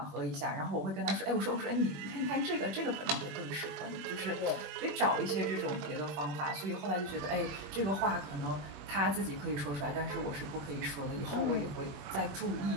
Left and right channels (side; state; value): left; late; 21 ms